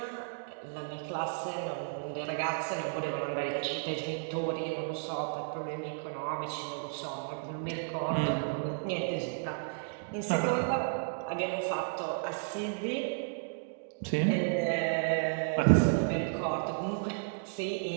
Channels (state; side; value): silent; left; digital silence